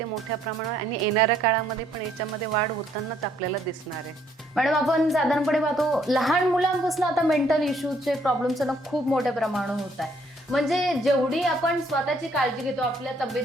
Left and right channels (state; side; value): normal; both; correlation 0.67